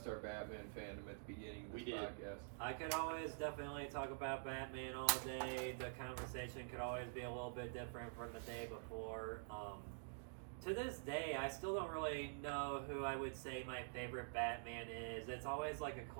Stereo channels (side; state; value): left; silent; digital silence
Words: our Batman fandom at the beginning of this We did. podcast. I could always definitely talk about Batman all day. The conversation could always be a little bit different from the day before. To this day, I still don't really know who I would say my favorite Batman is. It's always like a